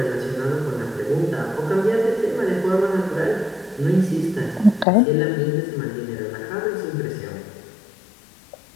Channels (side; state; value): right; drops out; at 4.9 s